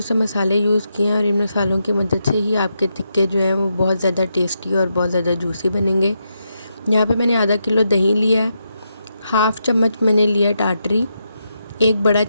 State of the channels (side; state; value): both; inverted; correlation -0.83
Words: से मसाले यूज़ किए हैं, और इन मसालों की मदद से ही आपके टिक्के जो हैं वो बहुत ज़्यादा टेस्टी और बहुत ज़्यादा जूसी बनेंगे। यहाँ पर मैंने आधा किलो दही लिया है, 1/2 चम्मच मैंने लिया टाटरी, 1 बड़ा